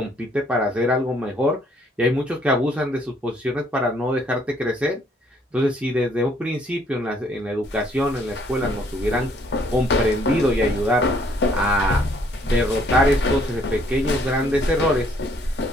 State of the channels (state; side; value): normal; both; correlation 0.65